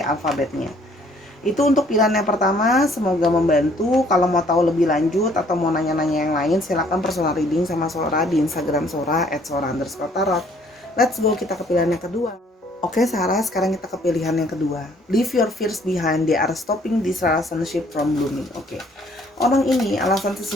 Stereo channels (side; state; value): both; normal; correlation 0.61